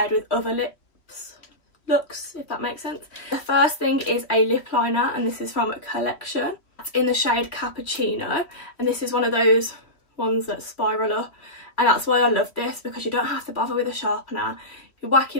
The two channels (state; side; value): late; right; 3.1 ms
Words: with other looks, if that makes sense. The first thing is a lip liner, and this is from a collection. It's in the shade Cappuccino, and this is one of those ones that spiral up, and that's why I love this, because you don't have to bother with a sharpener. You whack